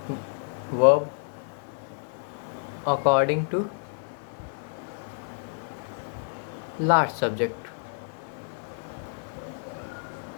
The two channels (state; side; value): silent; right; 59 dB below the other